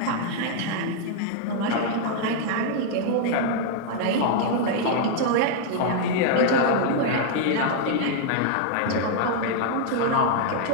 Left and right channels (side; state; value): both; different; correlation -0.01